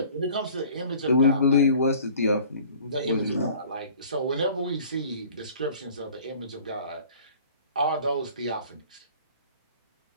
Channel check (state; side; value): inverted; both; correlation -0.49